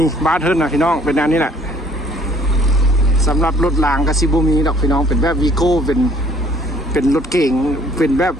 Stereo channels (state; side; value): normal; both; correlation 0.58